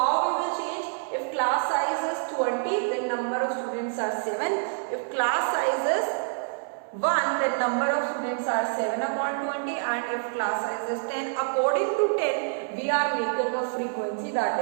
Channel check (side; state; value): left; silent; 60 dB below the other